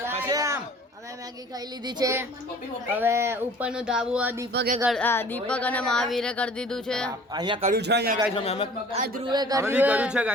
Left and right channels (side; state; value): both; normal; correlation 0.49